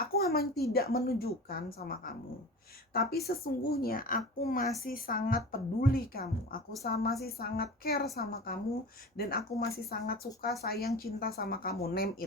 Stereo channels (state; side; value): normal; both; correlation 0.34